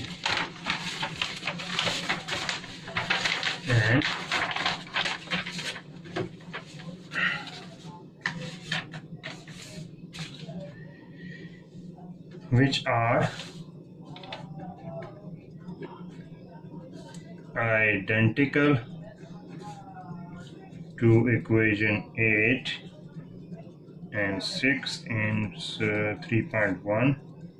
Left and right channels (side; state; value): both; identical; correlation 1.00